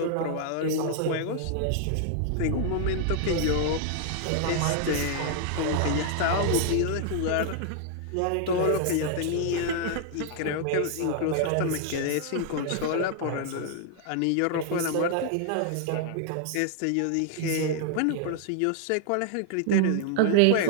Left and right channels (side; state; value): both; different; correlation 0.00